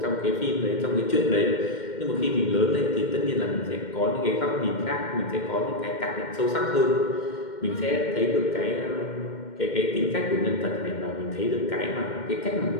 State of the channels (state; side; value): late; right; 2.1 ms